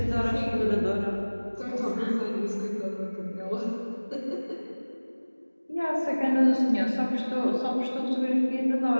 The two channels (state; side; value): inverted; both; correlation -1.00